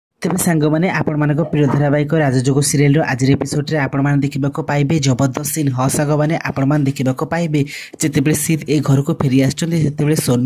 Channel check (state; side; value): identical; both; correlation 1.00